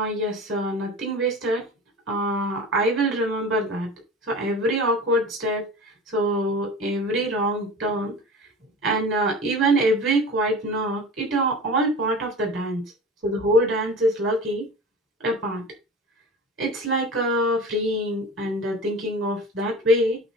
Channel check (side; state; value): both; normal; correlation 0.35